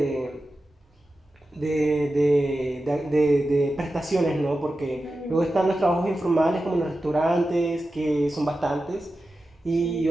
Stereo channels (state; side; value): normal; both; correlation 0.93